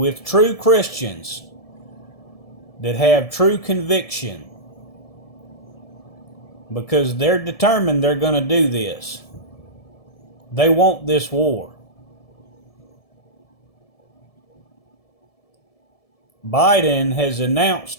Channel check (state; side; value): late; right; 1.7 ms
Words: true Christians that have true conviction, because they're determined they're going to do this. They want this war. Biden has